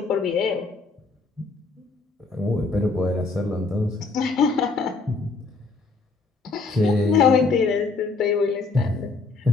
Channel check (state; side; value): quieter; right; 4.0 dB